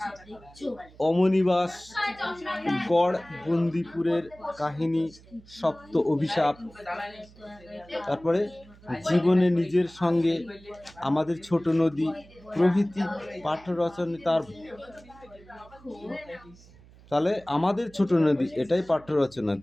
অমনিবাস, গড় বন্দিপুরের কাহিনী, সপ্ত অভিশাপ, তারপরে জীবনে নিজের সঙ্গে, আমাদের ছোট নদী প্রভৃতি পাঠ্য রচনা তার। তাহলে আমাদের ছোট নদী এটাই পাঠ্য রচনা,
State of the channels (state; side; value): noise; right; hum, 24 dB below the sound